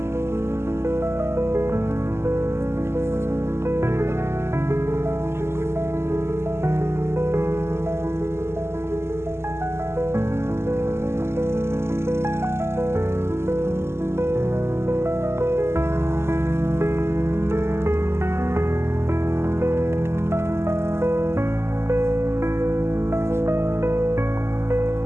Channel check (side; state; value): left; late; 0.12 ms